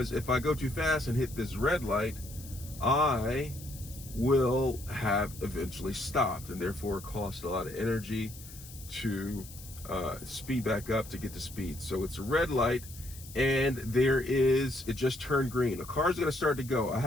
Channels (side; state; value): left; noise; hiss, 16 dB below the sound